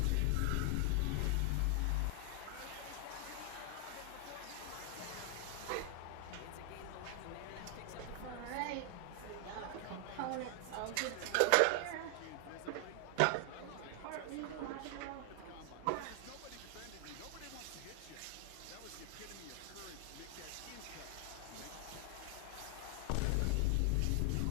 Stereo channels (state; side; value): different; both; correlation 0.00